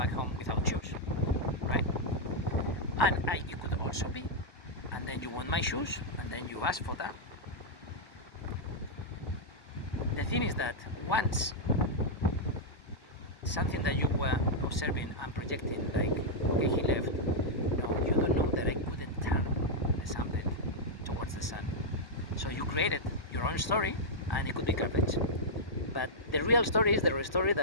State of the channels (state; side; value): late; right; 1.1 ms